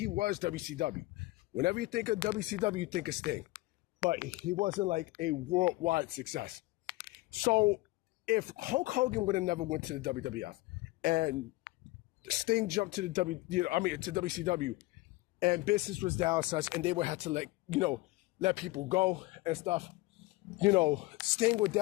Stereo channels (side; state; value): right; quieter; 20.2 dB